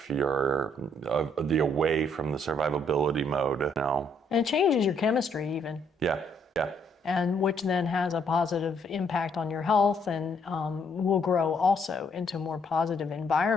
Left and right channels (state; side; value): normal; both; correlation 0.69